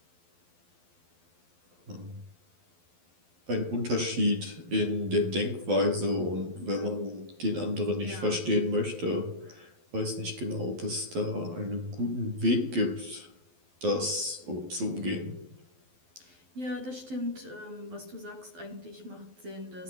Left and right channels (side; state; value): left; late; 12 ms